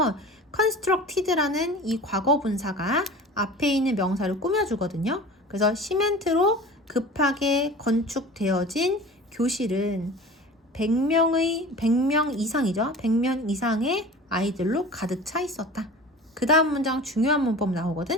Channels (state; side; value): normal; both; correlation 0.38